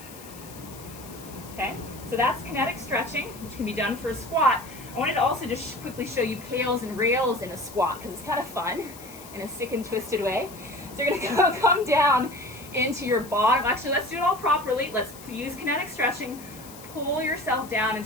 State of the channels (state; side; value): noise; left; hiss, 18 dB below the sound